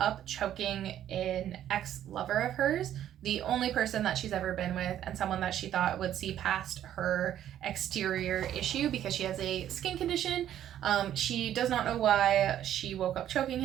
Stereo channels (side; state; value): left; quieter; 11.2 dB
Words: choking an ex-lover of hers, the only person that she's ever been with, and someone that she thought would see past her exterior issue because she has a skin condition. She does not know why she woke up choking